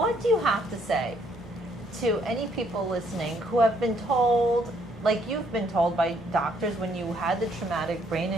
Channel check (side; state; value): both; normal; correlation 0.68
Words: do you have to say to any people listening who have been told, like you've been told by doctors when you had the traumatic brain